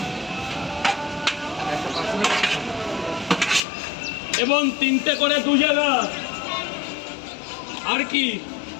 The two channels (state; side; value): drops out; right; at 3.6 s